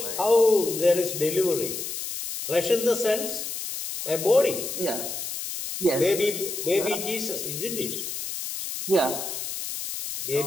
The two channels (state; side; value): noise; left; hiss, 6 dB below the sound